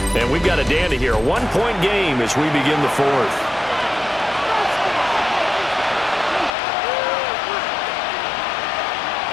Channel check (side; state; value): right; drops out; at 6.5 s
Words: And we've got a dandy here. A 1-point game as we begin the 4th.